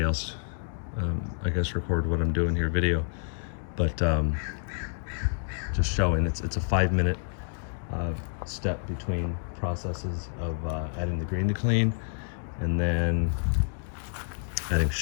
else, I guess, record what I'm doing here, video, but just showing it's a 5-minute step between processes of adding the Green to Clean and then adding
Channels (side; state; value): right; silent; digital silence